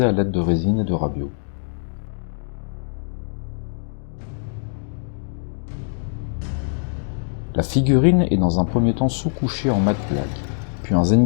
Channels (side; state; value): right; silent; digital silence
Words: à l'aide de résine et de rabio. La figurine est dans un premier temps sous-couchée en matte black, puis un